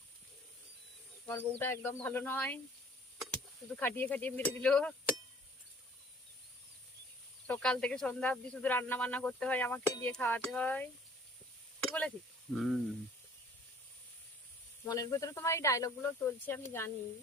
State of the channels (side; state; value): both; normal; correlation 0.53